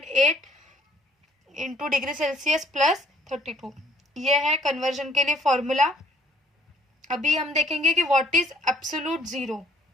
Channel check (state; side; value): normal; both; correlation 0.60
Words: into degree Celsius plus 32। ये है कन्वर्जन के लिए फॉर्मूला। अभी हम देखेंगे कि what is absolute zero.